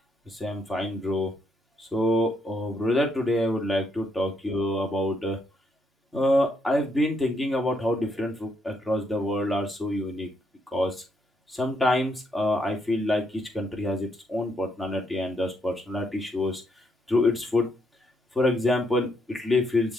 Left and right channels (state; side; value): normal; both; correlation 0.75